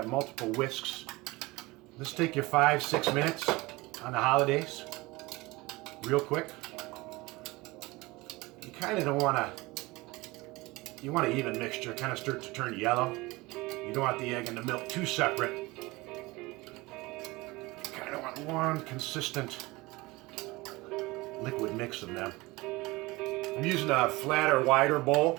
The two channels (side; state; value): left; quieter; 22.0 dB